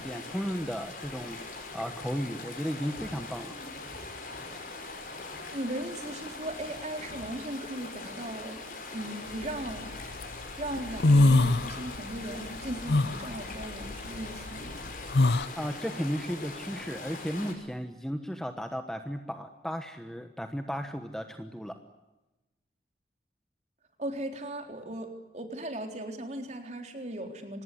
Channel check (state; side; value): normal; both; correlation 0.76